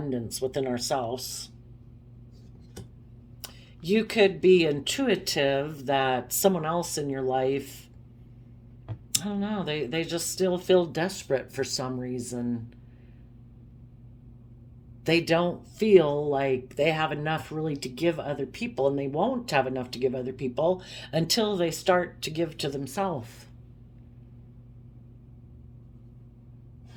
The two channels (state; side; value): identical; both; correlation 1.00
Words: within ourselves. You could be intuitive that someone else in your life, I don't know, they just still feel desperate for some reason. they don't feel like they have enough really to give other people, and they won't have enough to give other people until they start to give to themselves.